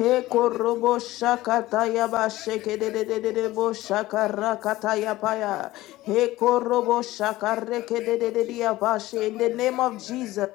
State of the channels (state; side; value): quieter; right; 17.2 dB